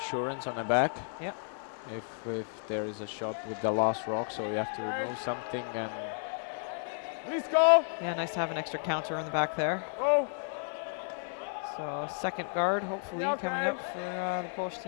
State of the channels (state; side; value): silent; right; digital silence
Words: on the back. Yep. If there is a shot with the last rock, so you have to remove something, and Blisko! Yeah, nice to have an extra counter in the back there. Go! So second guard hopefully Yeah, coming okay. up for the Polish